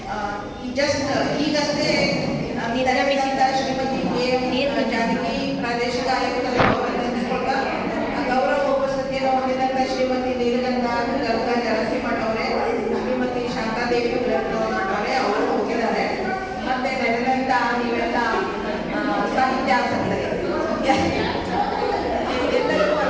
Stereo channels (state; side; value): identical; both; correlation 1.00